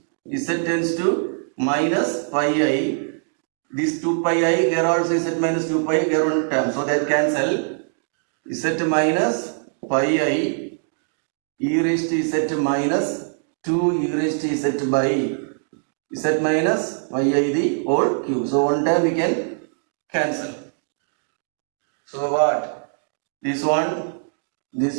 tends to minus pi I. This 2 pi I, here also z minus 2 pi, here one term, so that cancel. Z minus pi I e raised to z minus 2 e raised to z by z minus pi I the whole cube. So one time we can cancel. So what? This one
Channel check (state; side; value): silent; left; digital silence